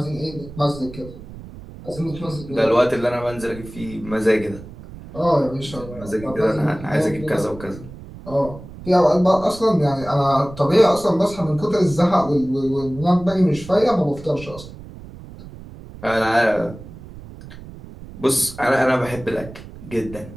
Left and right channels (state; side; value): noise; right; rumble, 15 dB below the sound